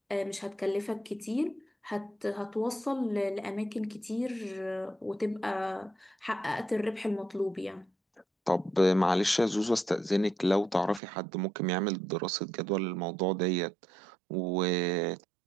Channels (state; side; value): drops out; left; at 11.0 s